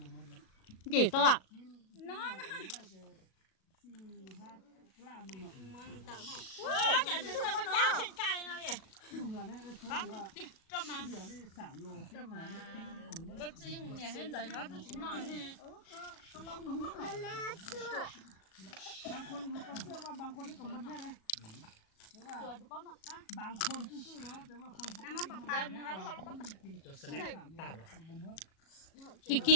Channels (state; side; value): late; right; 37 ms